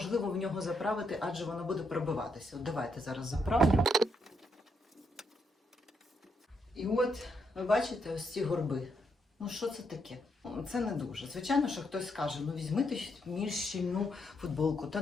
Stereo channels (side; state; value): both; normal; correlation 0.78